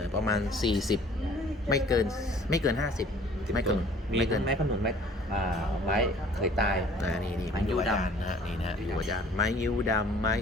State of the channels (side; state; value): both; normal; correlation 0.53